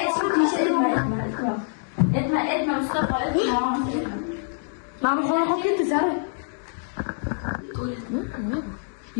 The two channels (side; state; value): right; silent; digital silence